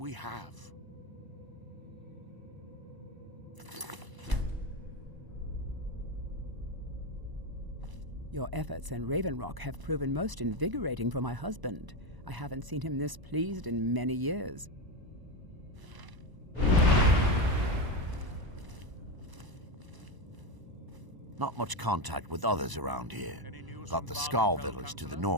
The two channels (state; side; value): late; left; 1.0 ms